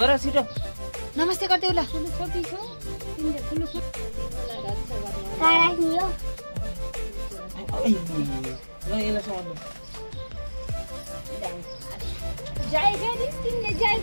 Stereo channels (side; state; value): both; inverted; correlation -1.00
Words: छिटो। नमस्ते गरिदेऊ ल। जय गरी तिमीले जय